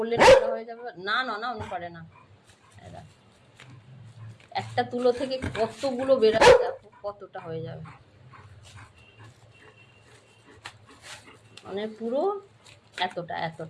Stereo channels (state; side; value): identical; both; correlation 1.00